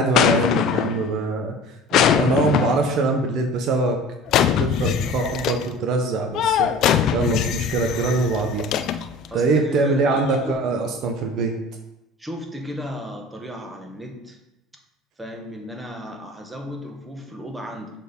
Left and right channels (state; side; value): normal; both; correlation 0.41